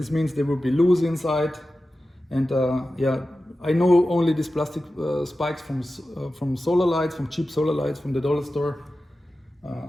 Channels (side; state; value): both; normal; correlation 0.94